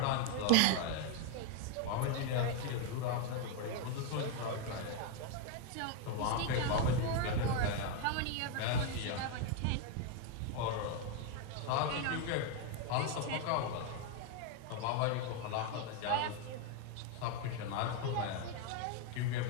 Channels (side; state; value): both; different; correlation 0.01